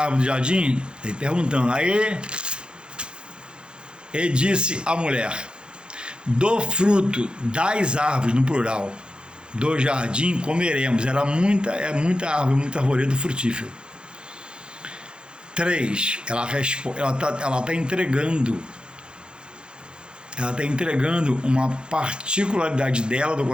do jardim? Ele perguntando. Aí ele disse à mulher: do fruto das árvores, no plural, do jardim comeremos. Era muita árvore, muito arvoredo frutífero. 3. Ela está entregando ela está entregando uma particularidade dela, do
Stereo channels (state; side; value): late; left; 0.051 ms